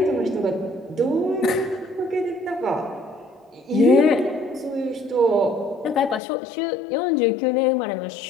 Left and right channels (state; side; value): drops out; right; at 6.2 s